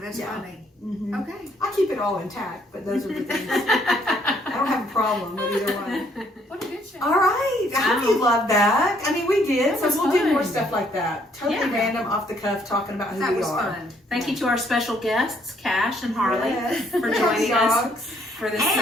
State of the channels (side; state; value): both; normal; correlation 0.67